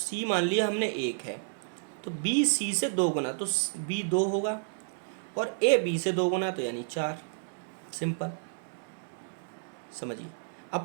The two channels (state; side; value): silent; left; digital silence